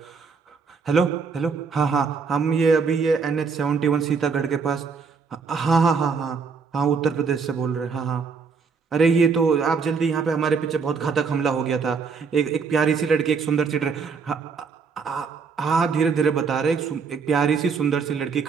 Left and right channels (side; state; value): left; quieter; 5.4 dB